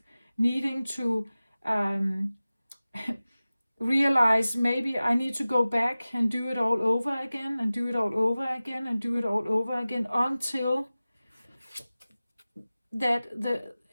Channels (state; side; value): inverted; both; correlation -0.97